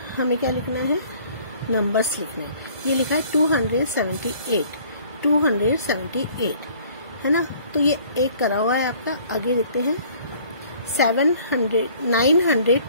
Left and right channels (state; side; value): inverted; both; correlation -0.55